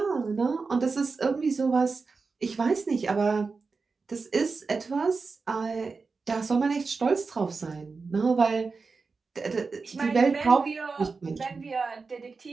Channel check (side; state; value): left; quieter; 4.5 dB